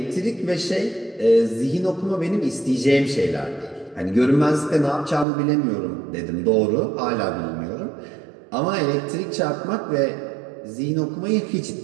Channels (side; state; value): left; drops out; at 5.2 s